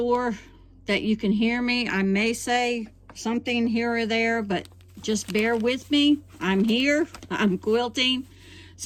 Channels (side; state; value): both; identical; correlation 1.00